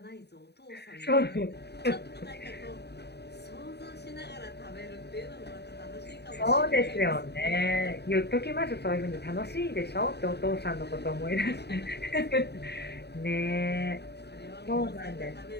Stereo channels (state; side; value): late; right; 0.48 ms